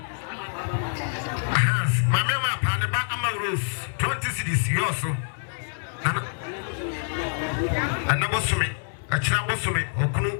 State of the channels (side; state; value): right; silent; 61 dB below the other